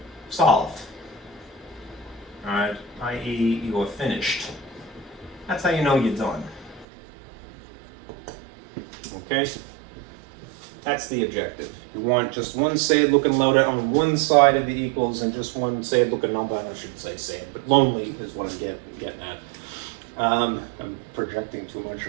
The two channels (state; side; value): drops out; left; at 6.9 s